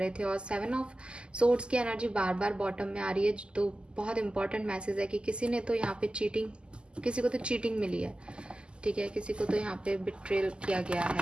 थे। और 7 ऑफ सोर्ड्स की एनर्जी बार बार बॉटम में आ रही है, तो बहुत इंपॉर्टेंट मैसेज है कि किसी ने तो यहाँ पे चीटिंग, किसी को तो चीटिंग मिली है, ठीक है, किसी को तो यहाँ पे बिट्रेल किया गया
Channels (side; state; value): left; late; 0.050 ms